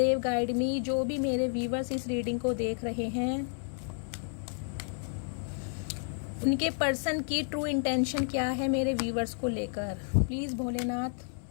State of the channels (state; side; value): silent; right; 57 dB below the other